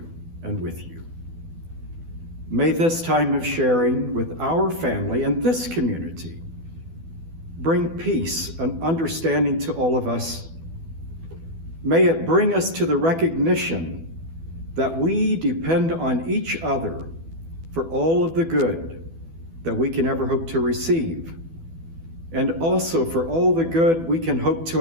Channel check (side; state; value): left; late; 12 ms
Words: and with you. May this time of sharing with our family and this community bring peace and understanding to all of us. May it bring us to the recognition that we depend on each other for all of the good that we can ever hope to receive, and also for all the good we can hope